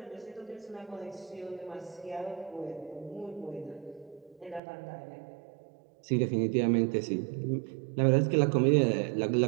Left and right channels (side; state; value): left; drops out; at 4.6 s